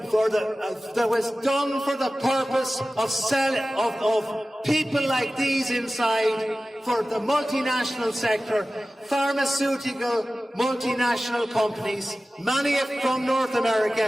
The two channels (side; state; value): both; normal; correlation 0.96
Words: was done for the purpose of people like these inside, for the multinational sector, pharmaceutical multinational companies, many from North